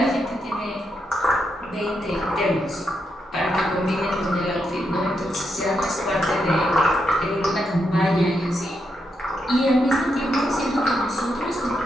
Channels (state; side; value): normal; both; correlation 0.82